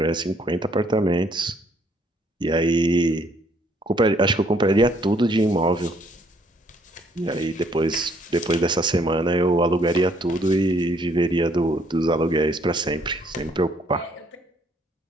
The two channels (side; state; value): both; normal; correlation 0.66